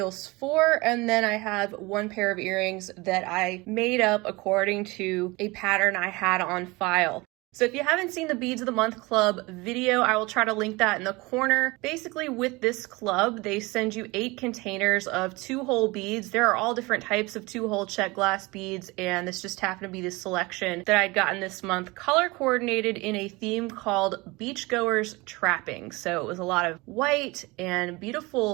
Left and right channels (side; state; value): left; quieter; 23.5 dB